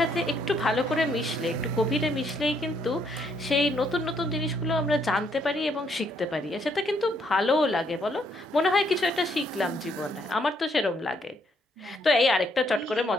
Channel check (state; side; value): normal; both; correlation 0.71